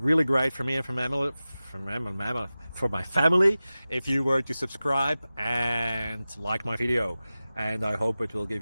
great for me and for my family if you were to subscribe and like my video, and I hope it will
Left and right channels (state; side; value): inverted; both; correlation -0.96